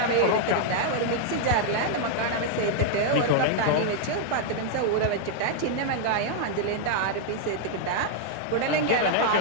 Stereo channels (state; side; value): different; both; correlation -0.01